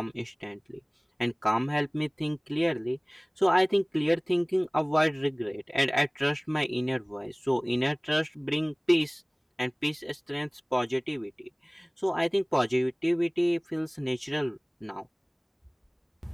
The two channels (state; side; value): identical; both; correlation 1.00